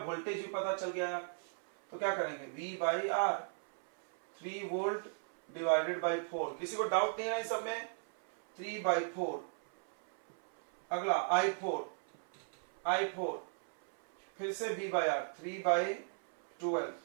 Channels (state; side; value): silent; left; 53 dB below the other